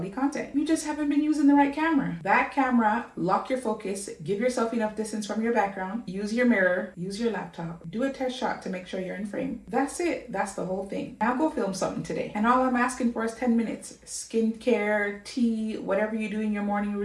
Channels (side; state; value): both; identical; correlation 1.00